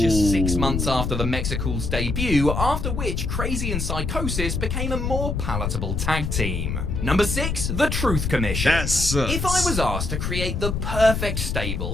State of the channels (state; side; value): noise; left; rumble, 1 dB below the sound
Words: 6 months after the Mexical's debut, after which Crazy and Psychosis became a more palatable tag team. Number 6, the Truth Commission. That sucks. If I was asked to create the perfect